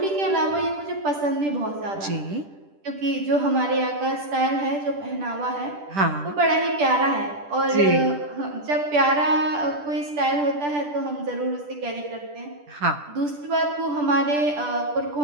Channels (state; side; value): late; left; 10 ms